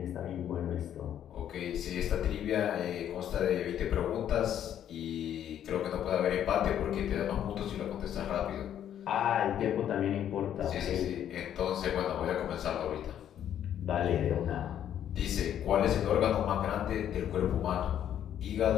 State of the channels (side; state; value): right; quieter; 10.2 dB